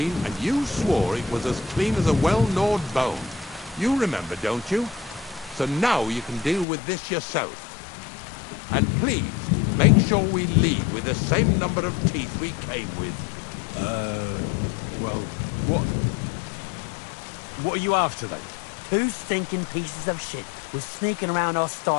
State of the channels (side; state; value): right; drops out; at 6.7 s